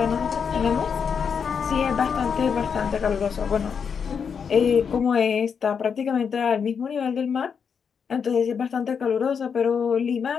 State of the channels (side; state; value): right; quieter; 6.6 dB